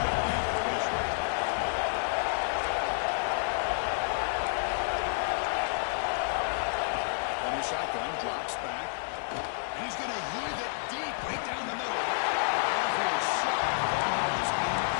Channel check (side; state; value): right; silent; digital silence